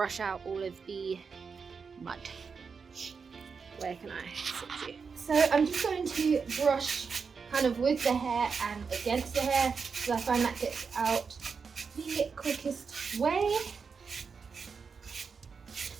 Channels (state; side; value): quieter; left; 5.5 dB